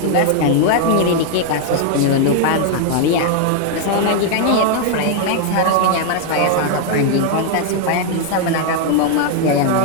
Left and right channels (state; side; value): different; both; correlation 0.00